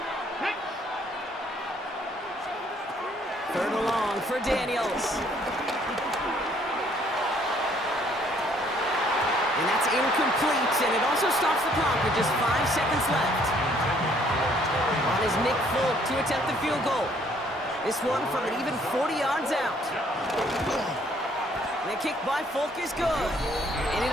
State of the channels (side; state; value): both; normal; correlation 0.63